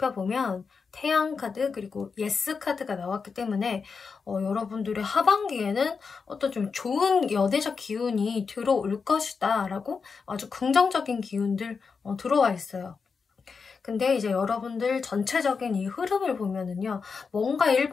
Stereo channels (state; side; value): quieter; right; 5.3 dB